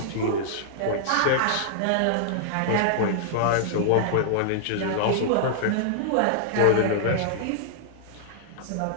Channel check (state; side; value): different; both; correlation -0.01